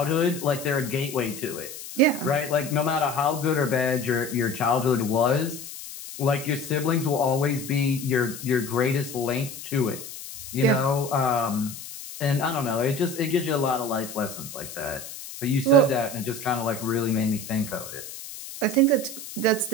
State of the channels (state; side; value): noise; left; hiss, 12 dB below the sound